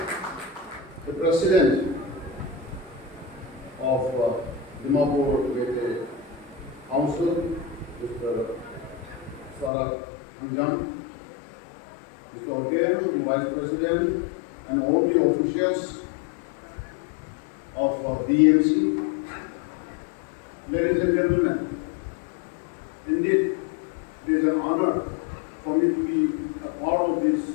The President of Dimapur Meeteei Council, Mr. Sarat Anjam, Mr. Okem, the Vice President, and all the officials of DMC, ladies and gentlemen, indeed it is an honor for me to be a part of this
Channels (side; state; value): right; drops out; at 9.7 s